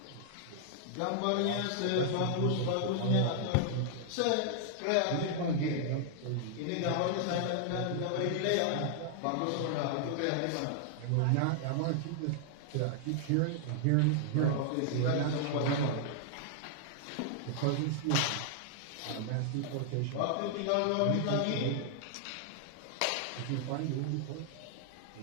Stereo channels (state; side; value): different; both; correlation -0.01